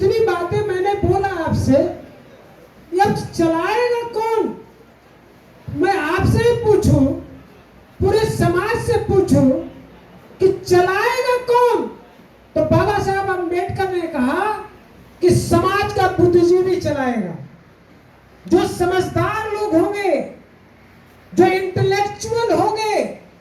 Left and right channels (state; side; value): identical; both; correlation 1.00